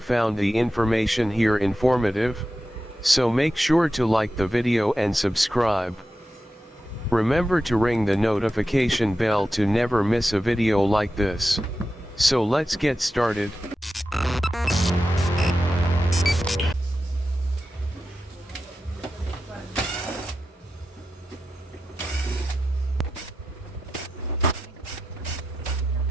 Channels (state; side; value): normal; both; correlation 0.91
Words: found the information here informative, so make sure to like the video and subscribe. Remember to ring the notification bell to never miss a video like this. So let's get started.